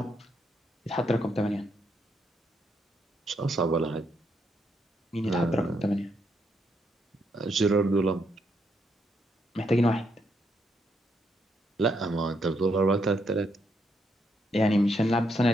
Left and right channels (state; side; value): normal; both; correlation 0.77